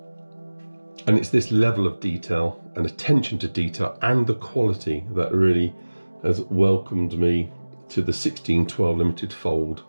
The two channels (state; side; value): inverted; both; correlation -1.00